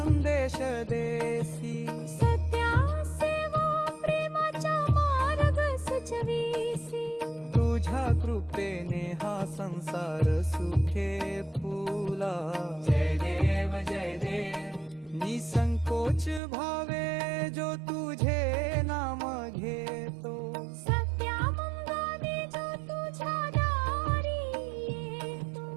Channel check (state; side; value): drops out; left; at 16.4 s